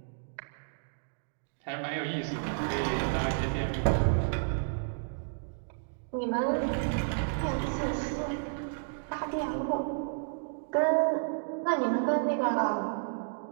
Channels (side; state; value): left; silent; digital silence